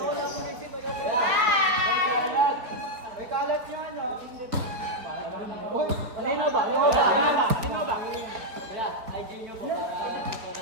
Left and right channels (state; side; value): late; left; 4.3 ms